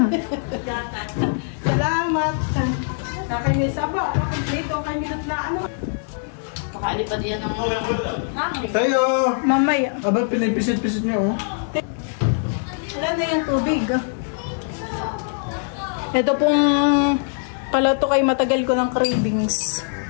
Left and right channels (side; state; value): right; silent; digital silence